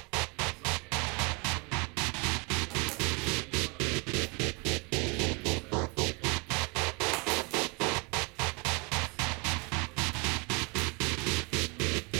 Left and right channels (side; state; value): left; quieter; 31.3 dB